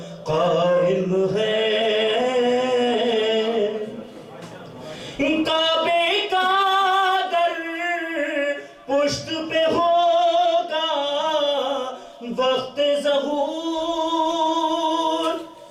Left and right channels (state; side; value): identical; both; correlation 1.00